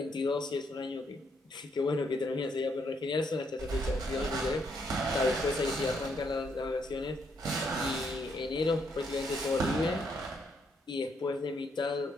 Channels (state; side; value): normal; both; correlation 0.74